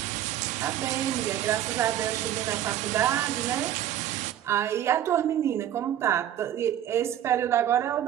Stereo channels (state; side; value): quieter; left; 11.3 dB